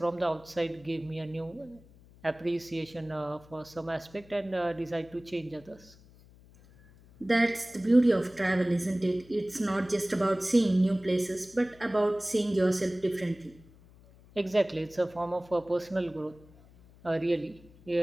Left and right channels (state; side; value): noise; left; hum, 25 dB below the sound